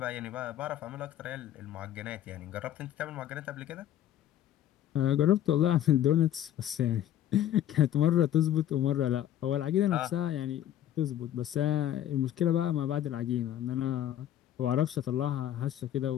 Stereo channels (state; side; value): quieter; right; 11.6 dB